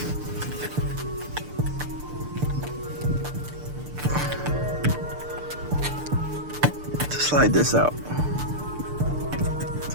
To slide this out. That's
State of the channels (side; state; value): left; late; 6.7 ms